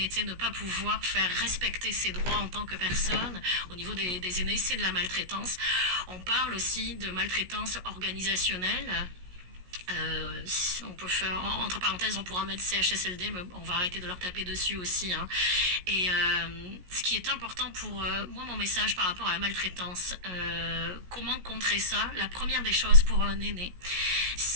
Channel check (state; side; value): late; left; 17 ms